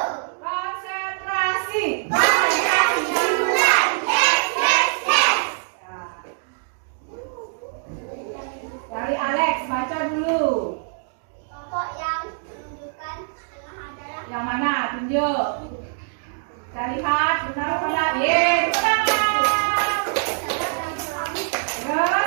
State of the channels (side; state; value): left; silent; digital silence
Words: Yang mana? Tunjuk. Kita lihat benar apa tidak? Yes, benar.